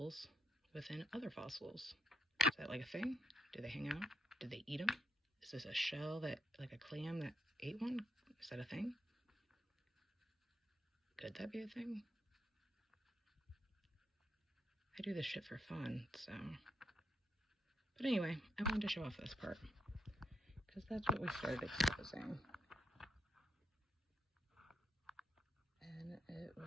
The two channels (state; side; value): normal; both; correlation 0.78